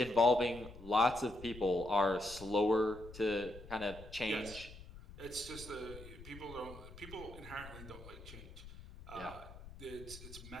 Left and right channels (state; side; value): noise; left; rumble, 15 dB below the sound